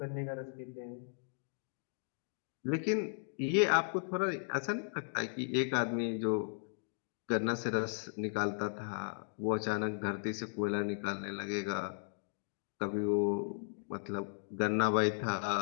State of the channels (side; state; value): right; silent; digital silence